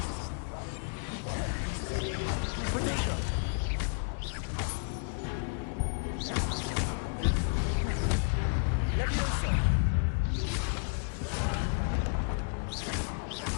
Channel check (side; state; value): right; silent; digital silence